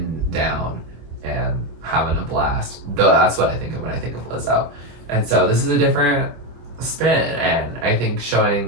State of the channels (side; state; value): left; late; 25 ms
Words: down and having a blast. Though that's what I think of when I think of Lizzo. And so this is a different spin, and I think